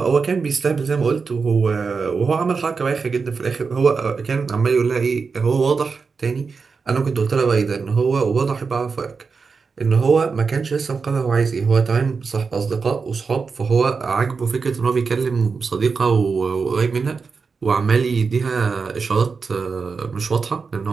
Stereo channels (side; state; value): left; quieter; 5.0 dB